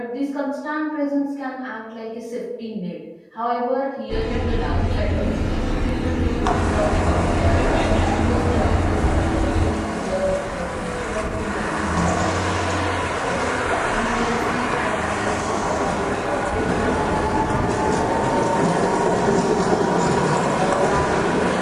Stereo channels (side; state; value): both; identical; correlation 1.00